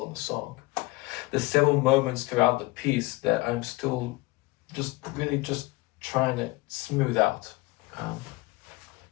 in the song. There's several moments throughout the piece that I'm still just trying to smooth out.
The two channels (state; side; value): quieter; right; 22.4 dB